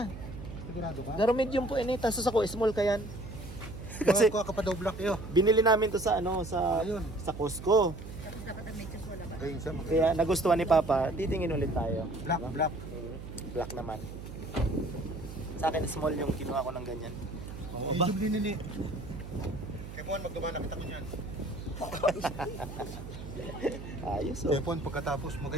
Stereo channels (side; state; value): right; noise; hum, 11 dB below the sound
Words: Sigurado ka? Pero medium po ini. Tapos ako small kayan. Kasi Kuha ka pa daw black iyo. binili namin to sa Ayun. sa Costco. Dapat ang medyo wala ba? Ayun siya. Kaya nagustuhan ni Papa. Titingin ulit tayo. Black, black. Black naman. Sa akin small yung kinuha ko ng ganyan. Oo, ba? Medium din ni. Kepon, magdumana kita ko niyan. Ayos oh. Kepon, pagkatapos